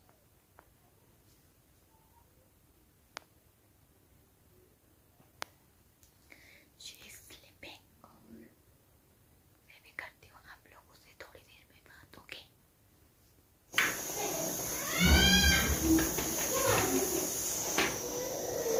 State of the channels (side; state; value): both; identical; correlation 1.00